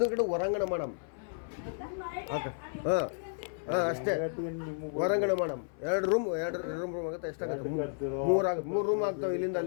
ಹೊರಾಂಗಣ ಮಾಡಮ್. ಹಾಂ ಅಷ್ಟೇ, ಹೊರಾಂಗಣ ಮಾಡಮ್. ಎರಡು ರೂಮ್ ಆಗುತ್ತೆ. ಎಷ್ಟಾಗುತ್ತೆ? ಮೂರು ರೂಮ್ ಆಗ್ತಾವೆ ಇಲ್ಲಿಂದ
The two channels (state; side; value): silent; right; 56 dB below the other